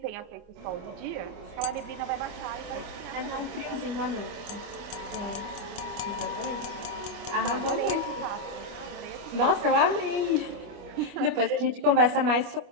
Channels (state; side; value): late; left; 25 ms